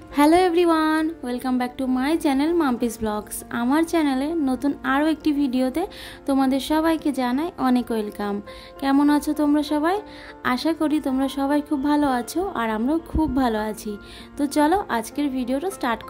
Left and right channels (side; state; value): both; identical; correlation 1.00